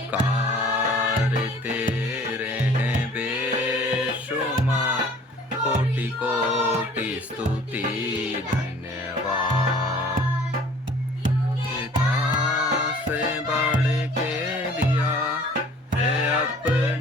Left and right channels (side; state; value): both; normal; correlation 0.50